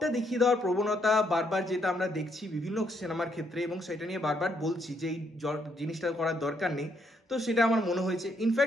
দেখিয়ে দেওয়ার প্রবণতা বারবার, যেটা আমরা দেখছি বিভিন্ন সিনেমার ক্ষেত্রে, এবং সেটা নিয়ে বারবার বলছি যে এই জিনিসটা করার দরকার নেই, তো সেটা আমার মনে হয়েছে।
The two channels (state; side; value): normal; both; correlation 0.73